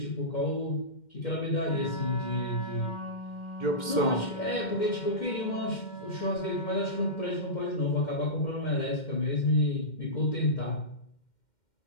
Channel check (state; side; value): late; right; 2.1 ms